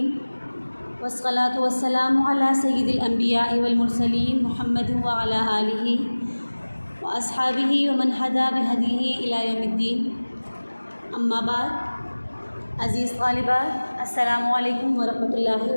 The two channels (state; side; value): inverted; both; correlation -1.00